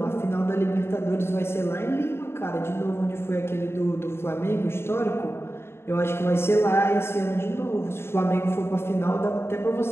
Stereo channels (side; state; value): right; late; 0.12 ms